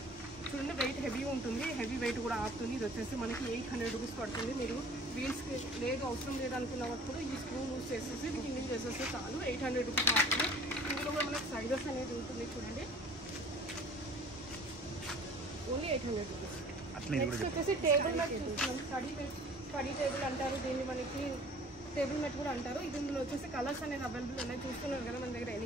చూడండి, వెయిట్ హెవీ ఉంటుంది, హెవీ వెయిట్ కూడా ఆపుతుంది. ఇది వచ్చేసి మనకి 800 రూపీస్ పడుతుంది. మీరు వీల్స్కి లేదు అవసరం లేదనుకున్నప్పుడు ఈ స్క్రూ లూజ్ చేసేసి కిందింగ్ చేసేస్తే చాలు. 800 రూపీస్ మాత్రమే. ఇందులో కూడా మనకి సైజెస్ అనేది ఉంటుంది చూడండి, ఓన్లీ 800 రూపీస్. నెక్స్ట్ వచ్చేసి టేబుల్ మ్యాట్ చూస్తున్నాం. స్టడీ టేబుల్ అంటారు దీన్ని, మనకి టేబుల్ మ్యాట్ కూడా అంటారు. ఇది ఇందులో వచ్చేసి కలర్స్ అనేది అవైలబుల్ ఉన్నాయి. చూస్తున్నారు కదా మన దగ్గర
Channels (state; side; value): normal; both; correlation 0.48